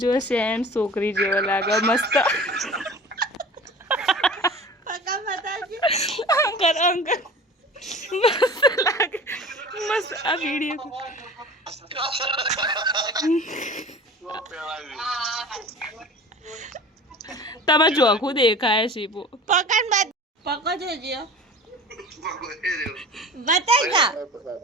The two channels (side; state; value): both; normal; correlation 0.39